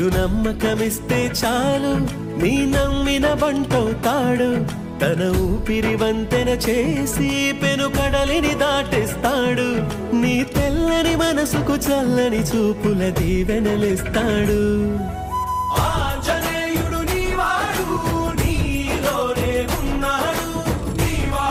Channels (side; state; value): both; identical; correlation 1.00